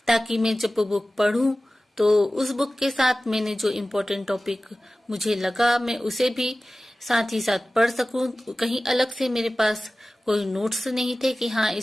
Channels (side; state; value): both; normal; correlation 0.96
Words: ताकि मैं जब वो बुक पढ़ूं तो उस बुक के साथ मैंने जो इम्पोर्टेंट टॉपिक मुझे लगा मैं उसे भी साथ ही साथ पढ़ सकूं। कहीं अलग से मेरे पास कोई नोट्स नहीं थे कि हाँ